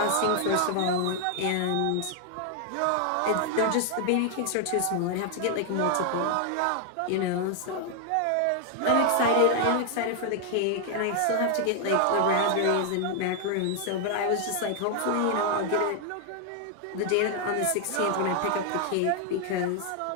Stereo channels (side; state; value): both; different; correlation 0.00